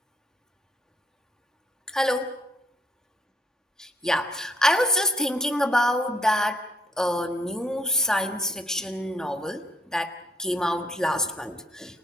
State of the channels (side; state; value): both; normal; correlation 0.69